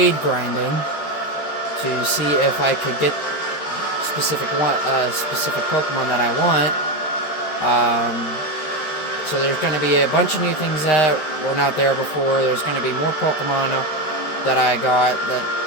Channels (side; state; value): right; late; 13 ms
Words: grinding to see if I could get specific Pokemon that I want. So there's going to be a bunch of new things that were not there before. There's going to be more Pokemon that I got that